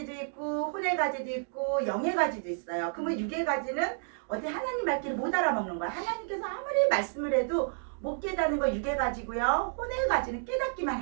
있고 혼의 가지도 있고 영의 가지도 있어요. 그러면 육의 가지는 어디 하나님 말귀를 못 알아먹는 거야. 하나님께서 아무리 말씀을 해도 못 깨닫는 거 육의 가지고요. 혼의 가지는 깨닫기만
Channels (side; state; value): left; silent; digital silence